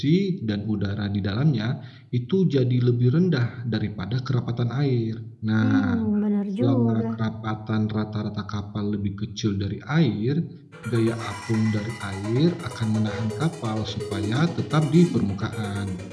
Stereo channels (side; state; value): both; identical; correlation 1.00